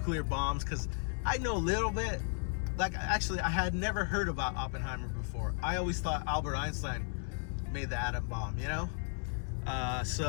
bombs, because I know a little bit. Actually, I had never heard about Oppenheimer before. I always thought Albert Einstein made the atom bomb,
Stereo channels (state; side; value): silent; right; 55 dB below the other